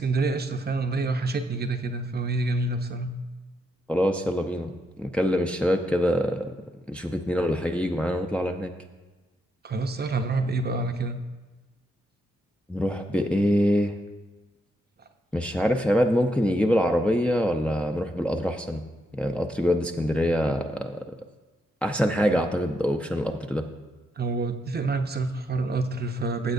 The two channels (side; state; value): both; normal; correlation 0.79